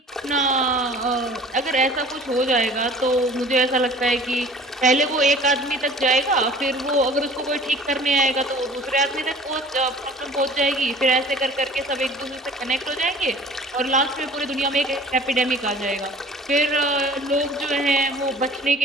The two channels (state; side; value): normal; both; correlation 0.47